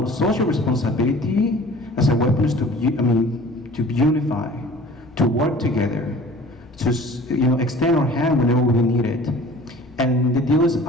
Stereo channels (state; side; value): normal; both; correlation 0.45